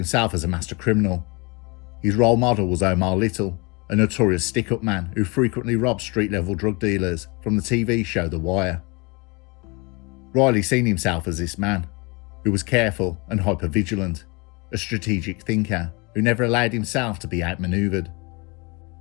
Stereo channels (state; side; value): quieter; right; 28.5 dB